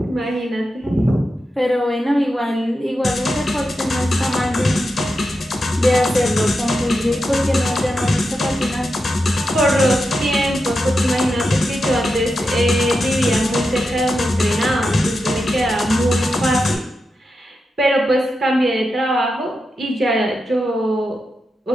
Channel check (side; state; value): both; normal; correlation 0.88